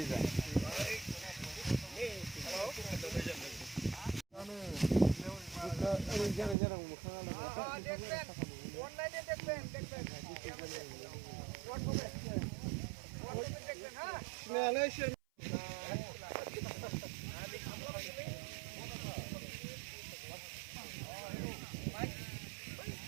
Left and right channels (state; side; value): drops out; left; at 6.6 s